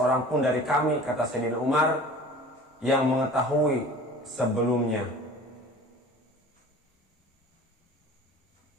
pun dari kami, kata Sayyidina Umar, yang mengetahui sebelumnya.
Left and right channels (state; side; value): normal; both; correlation 0.42